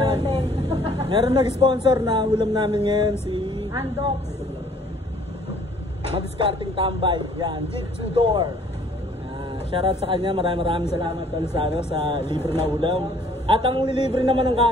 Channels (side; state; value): both; normal; correlation 0.58